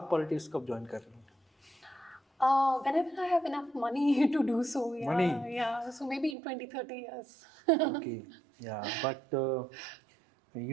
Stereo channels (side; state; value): left; drops out; at 6.4 s